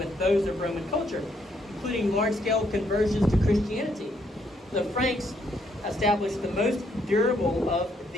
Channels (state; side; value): normal; both; correlation 0.72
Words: those of Roman culture, including large-scale conversions to Christianity. The Franks established the most durable of